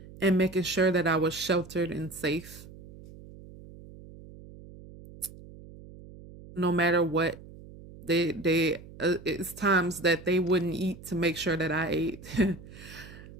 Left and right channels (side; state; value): right; noise; hum, 18 dB below the sound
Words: and making sure that I was sheltered and safe no matter what. They it's times that they wouldn't eat to make sure that I ate.